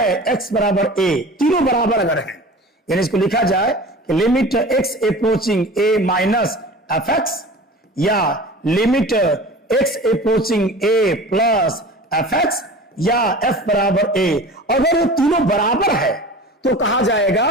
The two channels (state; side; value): normal; both; correlation 0.38